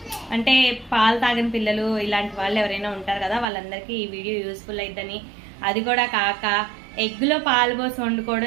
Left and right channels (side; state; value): left; drops out; at 3.5 s